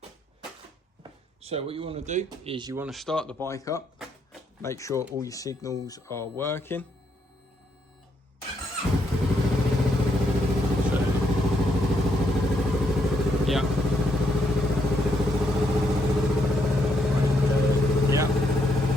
So what you want to do is you want to start the bike up, make sure all your signals are working. So, yeah.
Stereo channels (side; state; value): both; normal; correlation 0.75